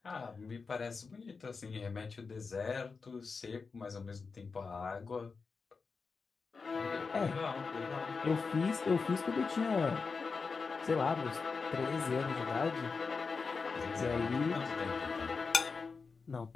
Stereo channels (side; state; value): right; quieter; 4.8 dB